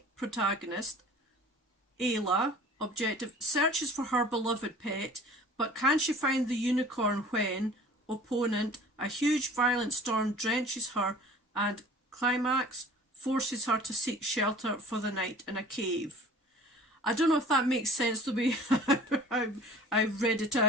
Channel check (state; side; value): normal; both; correlation 0.46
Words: protagonist. Ayla, objective, searches for her beloved pet, but can she find the unicorn when, opponent, a huge violent storm drenches her, and climax, forces her to seek shelter for the night in a cave. I don't know if that makes sense the way I read it